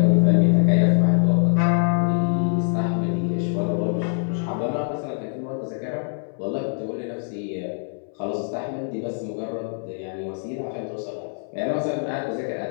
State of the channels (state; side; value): silent; right; 63 dB below the other